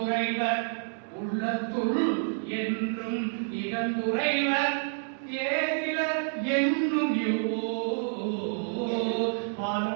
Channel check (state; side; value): silent; left; 59 dB below the other